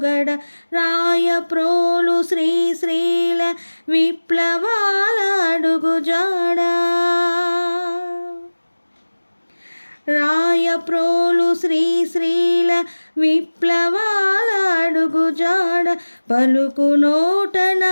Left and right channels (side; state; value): both; inverted; correlation -1.00